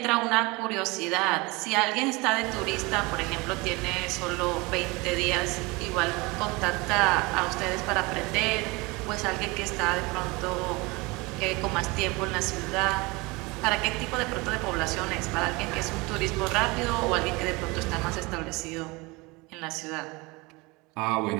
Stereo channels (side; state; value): left; quieter; 24.8 dB